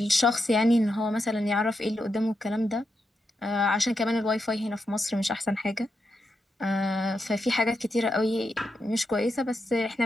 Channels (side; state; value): both; normal; correlation 0.85